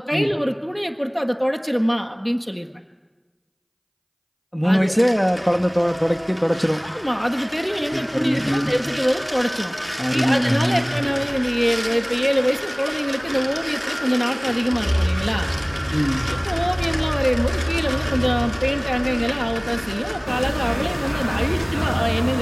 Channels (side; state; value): both; identical; correlation 1.00